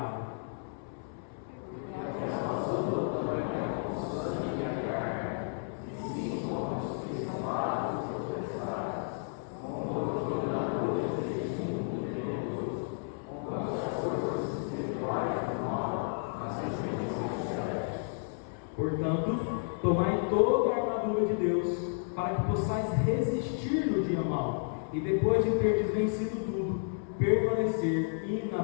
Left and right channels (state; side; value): silent; right; 56 dB below the other